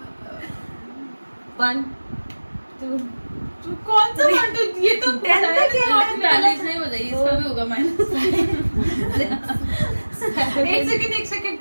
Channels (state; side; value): inverted; both; correlation -1.00